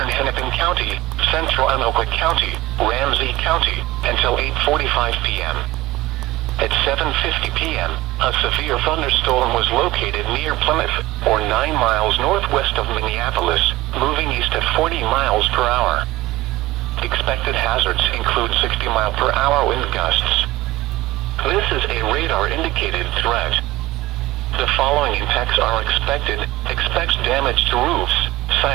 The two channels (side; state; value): left; quieter; 18.2 dB